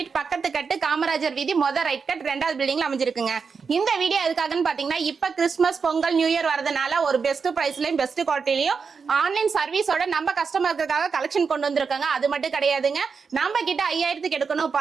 பக்கத்து கட்டு காமராஜர் வீதி ரைட் கட் 2வது பில்டிங்ல அமைஞ்சிருக்குங்க. இந்த வீடியோ எதுக்காகன்னு பாத்தீங்கன்னா இப்ப கிறிஸ்துமஸ் பொங்கல் நியூ இயர் வரதுனால ஒரு பெஸ்ட் பிரைஸ்லயும் பெஸ்ட் குவாலிட்டிலயும் ஆன்லைன் சர்வீஸோட நம்ம கஸ்டமர்களுக்காக கலெக்ஷன் கொண்டு வந்திருக்காங்க. அது மட்டும் கிடையாதுங்க, நம்ம கிட்ட 5000க்கு எடுக்கணும்,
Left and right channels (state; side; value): quieter; left; 5.5 dB